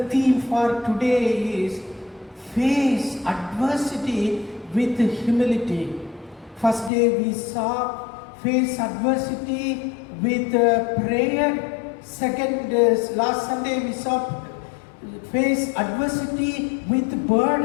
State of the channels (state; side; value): drops out; right; at 6.9 s